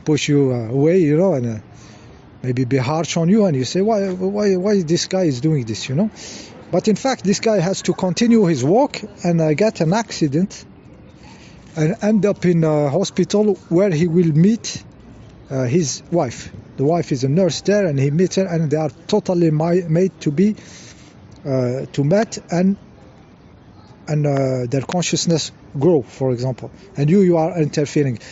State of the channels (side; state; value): both; identical; correlation 1.00